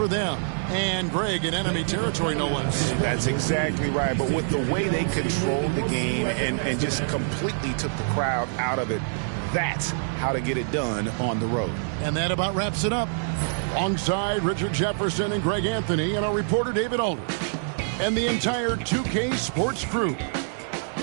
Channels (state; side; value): silent; left; digital silence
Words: them. And Greg in enemy territory, no less. That's exactly right. But with the way they controlled the game and just completely took the crowd out of it, that's how to get it done on the road. And that about wraps it up. Alongside Richard Jefferson and Greg Anthony and our reporter David Aldridge and the entire 2K Sports crew.